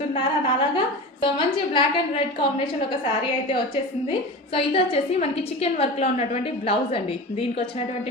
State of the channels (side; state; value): both; normal; correlation 0.30